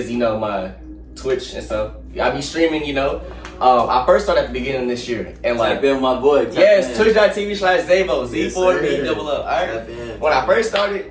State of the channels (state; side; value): identical; both; correlation 1.00